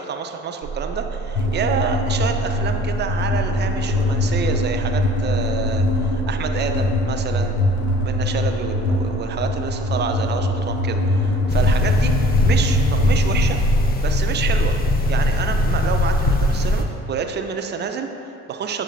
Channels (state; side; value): normal; both; correlation 0.51